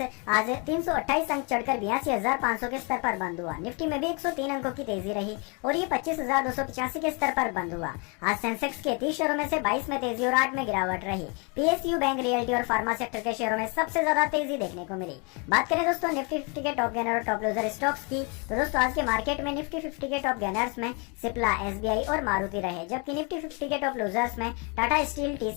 आज 328 अंक चढ़कर 82,500 के स्तर पर बंद हुआ। निफ्टी में भी 103 अंकों की तेजी रही और ये 25,285 के स्तर पर बंद हुआ। आज सेंसेक्स के 30 शेयरों में से 22 में तेजी और 8 में गिरावट रही। पीएसयू, बैंक, रियल्टी और फार्मा सेक्टर के शेयरों में सबसे ज्यादा तेजी देखने को मिली। बात करें दोस्तों निफ्टी 50 के टॉप गेनर और टॉप लूजर स्टॉक्स की, तो दोस्तों आज के मार्केट में निफ्टी 50 के टॉप गेनर्स में सिप्ला, एसबीआई और मारुति रहे, जबकि निफ्टी 50 के टॉप लूजर्स में टाटा स्टील,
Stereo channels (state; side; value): quieter; right; 32.7 dB